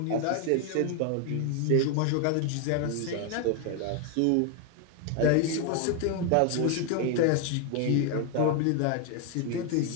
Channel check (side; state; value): both; different; correlation 0.01